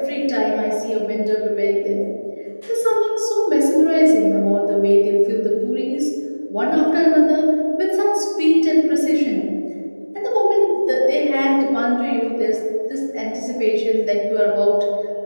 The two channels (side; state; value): both; inverted; correlation -1.00